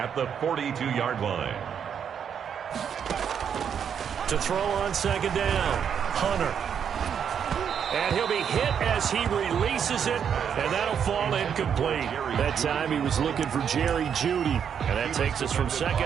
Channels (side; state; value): left; quieter; 7.9 dB